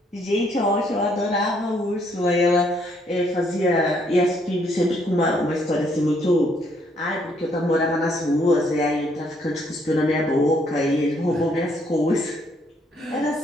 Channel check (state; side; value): normal; both; correlation 0.69